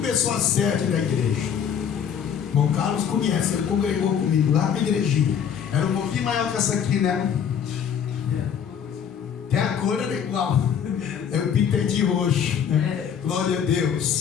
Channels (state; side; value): quieter; right; 8.0 dB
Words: a sede da igreja. Irmão Carlos conhece, ele congregou comigo lá na igrejinha. Era um pouquinho maior que essa aqui, né? Até a cor era igual. Eu pintei de roxo, né? Glória a